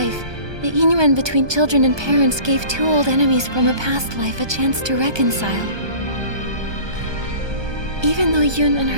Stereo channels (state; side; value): late; left; 1.2 ms